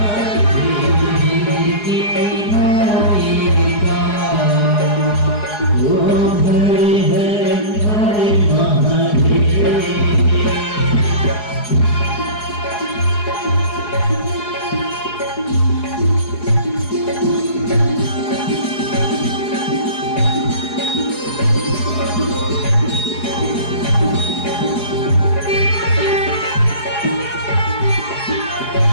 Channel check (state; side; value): late; right; 4.8 ms